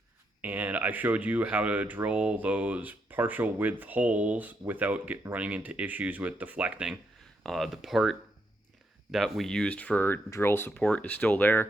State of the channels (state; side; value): normal; both; correlation 0.79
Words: and I showed you how to drill those partial width holes without running into issues with deflecting. The part that we used for drill support is still